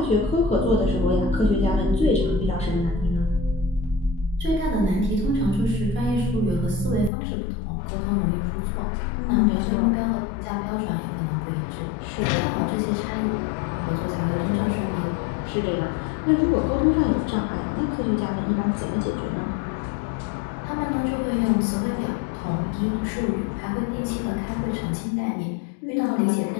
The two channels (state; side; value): drops out; right; at 7.1 s